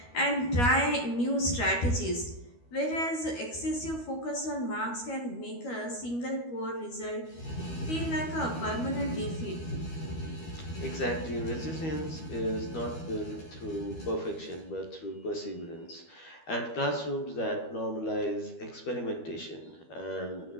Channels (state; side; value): late; right; 12 ms